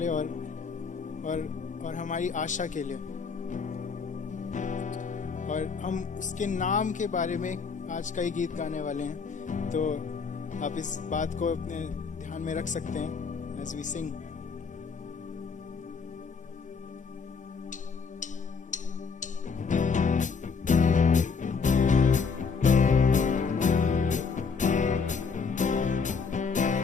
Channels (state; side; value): quieter; right; 5.4 dB